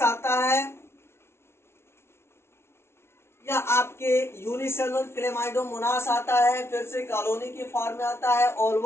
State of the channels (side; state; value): right; late; 0.12 ms